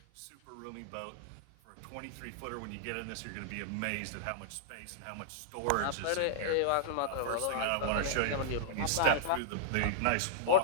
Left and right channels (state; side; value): different; both; correlation -0.01